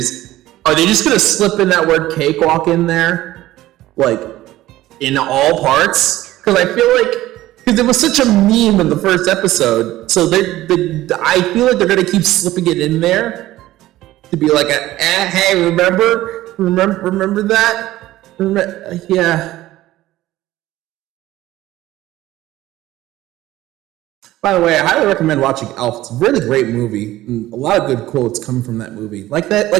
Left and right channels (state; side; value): quieter; left; 15.7 dB